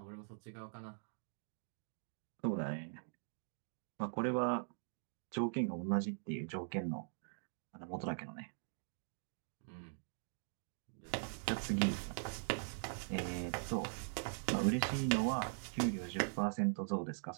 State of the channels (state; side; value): silent; left; digital silence